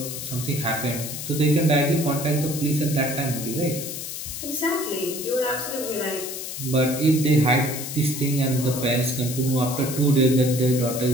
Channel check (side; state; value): left; noise; hiss, 7 dB below the sound